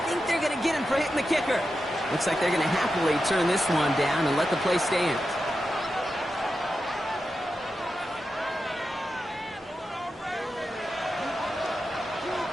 think they're going to get him for hitting the kicker. Looks like they're going to happily turn this one down and let the play stand.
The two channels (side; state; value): both; normal; correlation 0.90